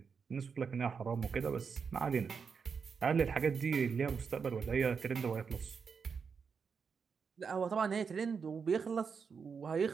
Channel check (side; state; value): left; quieter; 5.9 dB